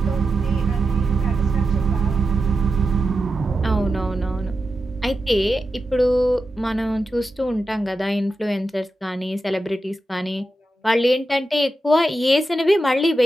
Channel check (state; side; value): normal; both; correlation 0.89